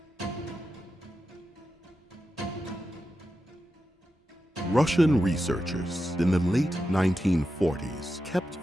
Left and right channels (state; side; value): normal; both; correlation 0.90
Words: Russian researchers in the late 1940s kept